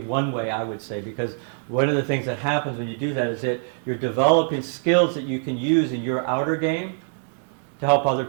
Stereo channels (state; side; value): silent; left; 59 dB below the other